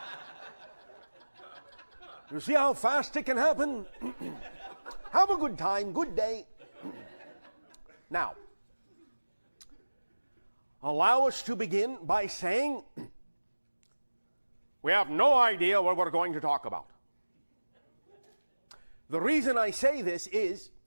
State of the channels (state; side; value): inverted; both; correlation -1.00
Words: You see how fast it can happen? Have a good time, good day. Now, allow us to begin by saying we have no idea what we're going to talk about. The reason I say this is